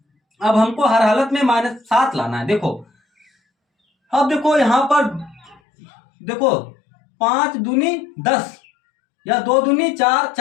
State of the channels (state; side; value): drops out; right; at 5.6 s